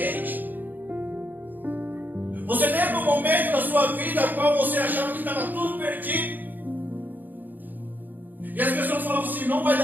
Você lembra um momento da sua vida no qual você achava que estava tudo perdido? E as pessoas falavam assim, não vai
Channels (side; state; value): left; late; 0.086 ms